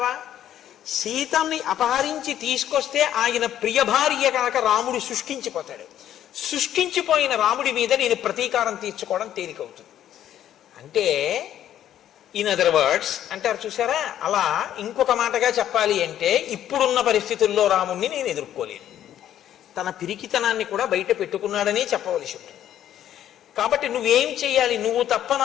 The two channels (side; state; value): right; quieter; 11.2 dB